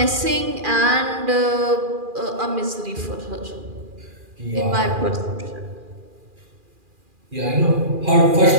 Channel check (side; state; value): left; late; 2.4 ms